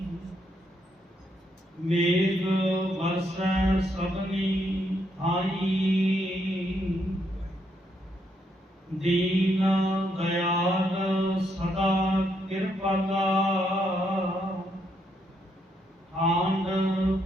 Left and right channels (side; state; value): both; normal; correlation 0.76